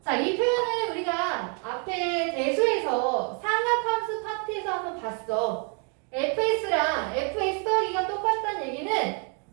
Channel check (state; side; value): quieter; left; 39.0 dB